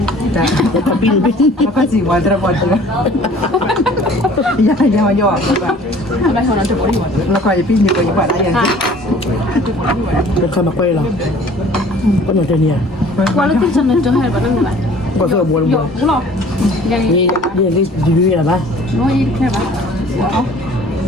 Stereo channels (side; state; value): both; normal; correlation 0.51